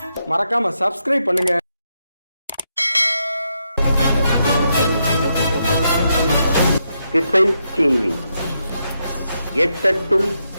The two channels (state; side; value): inverted; both; correlation -0.82